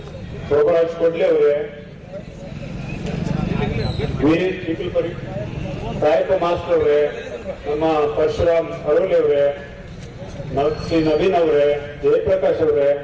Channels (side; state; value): both; identical; correlation 1.00